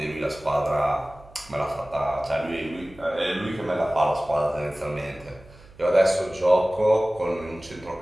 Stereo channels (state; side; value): noise; right; hum, 23 dB below the sound